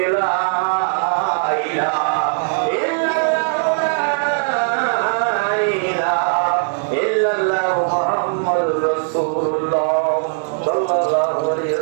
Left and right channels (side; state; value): left; silent; digital silence